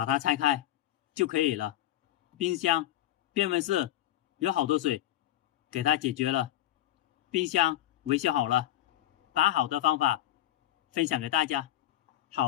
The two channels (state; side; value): quieter; right; 13.8 dB